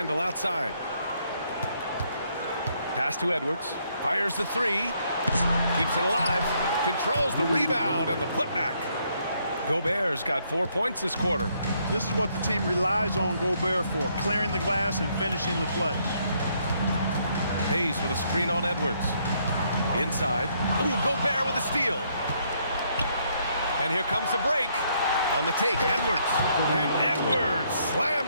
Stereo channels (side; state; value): both; inverted; correlation -0.71